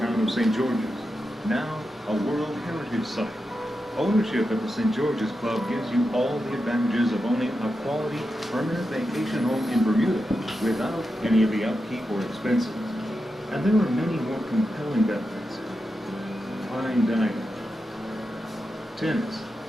of St. George's, now a World Heritage Site. Ownership at the St. George's Club gives you all the advantages of owning a quality, permanent vacation home in Bermuda without any of the upkeep or expenses. And there are many more compelling benefits. Fine dining, tennis,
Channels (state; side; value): normal; both; correlation 0.89